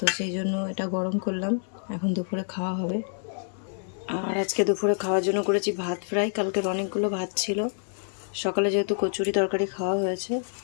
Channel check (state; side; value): silent; right; digital silence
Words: সেই জন্য এটা গরম করলাম, এখন দুপুরে খাওয়া হবে। আর আজকে দুপুরে খাওয়ার জন্য করেছি ভাত ফ্রাই, কালকের অনেকগুলো ভাত ছিল, সকালে যেহেতু কচুরি তরকারি খাওয়া হয়েছে,